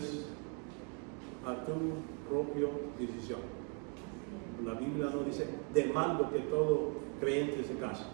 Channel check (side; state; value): left; quieter; 38.8 dB